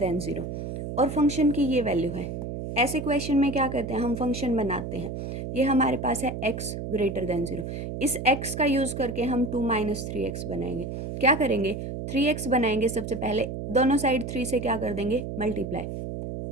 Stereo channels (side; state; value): right; noise; hum, 6 dB below the sound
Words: 0 और फंक्शन की ये वैल्यू है। ऐसे क्वेश्चन में क्या करते हैं? हम फंक्शन बनाते हैं। ये हमारे पास है x ग्रेटर देन 0। इस x का यूज़ करके हम 2 - 3x बनाएंगे। क्या करेंगे? 3x बनाएंगे। सबसे पहले दोनों साइड 3 से क्या कर देंगे?